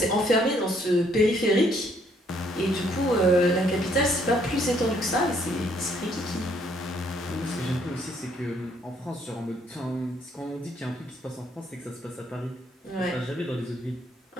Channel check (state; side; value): normal; both; correlation 0.67